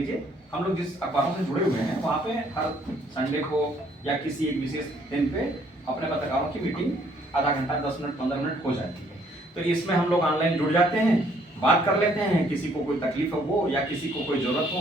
हम लोग जिस अखबारों से जुड़े हुए हैं वहाँ पे हर संडे को या किसी एक विशेष दिन पे अपने पत्रकारों की मीटिंग आधा घंटा 10 मिनट 15 मिनट हो जाती है। तो इसमें हम लोग ऑनलाइन जुड़ जाते हैं, बात कर लेते हैं, किसी को कोई तकलीफ हो या किसी को कोई जरूरत हो,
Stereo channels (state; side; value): normal; both; correlation 0.65